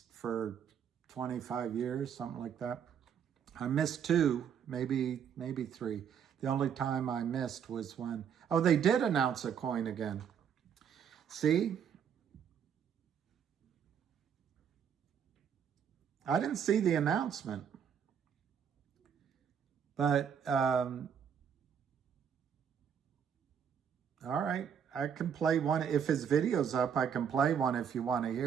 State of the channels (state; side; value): quieter; left; 7.9 dB